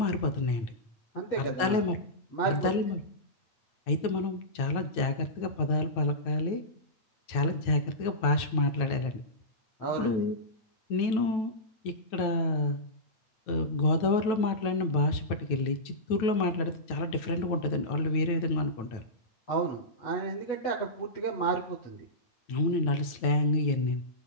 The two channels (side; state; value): right; late; 9.1 ms